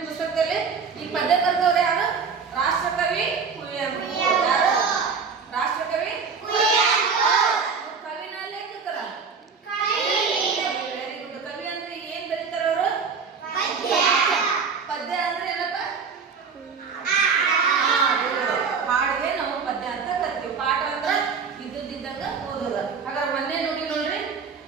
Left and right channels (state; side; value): quieter; left; 5.6 dB